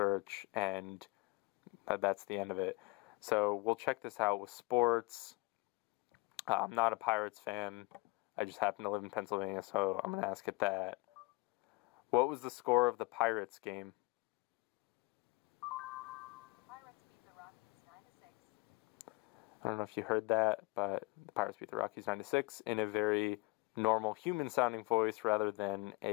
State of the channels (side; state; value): right; quieter; 24.6 dB